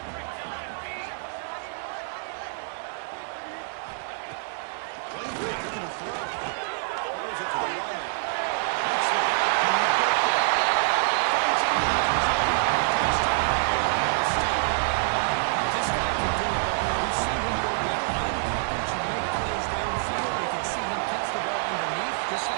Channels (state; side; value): silent; left; 61 dB below the other